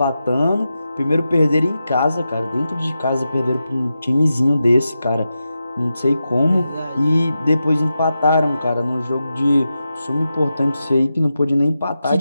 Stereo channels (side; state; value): both; inverted; correlation -0.90